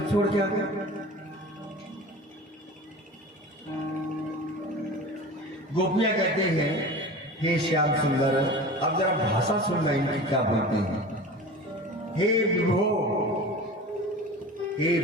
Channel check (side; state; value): both; normal; correlation 0.35